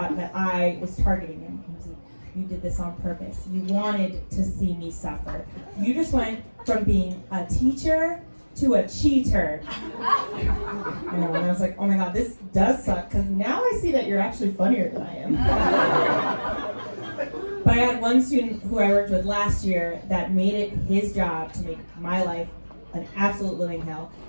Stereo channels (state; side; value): inverted; both; correlation -1.00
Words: that I was targeting him. He was like, you did this on purpose. You wanted to see me suffer. You just went from being a teacher to a cheater. I know, and I was like, oh my god, this does suck, because now I see that you're actually funnier than I am. But I had one student who I worked with last year that made it his job to make my life an absolute living hell.